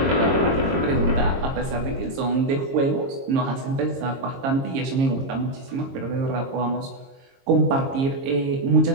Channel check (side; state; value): left; late; 22 ms